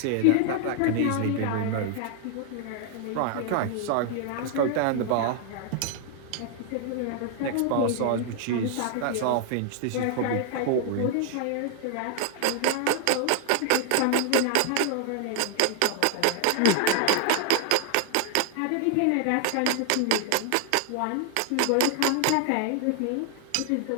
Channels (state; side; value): different; both; correlation 0.00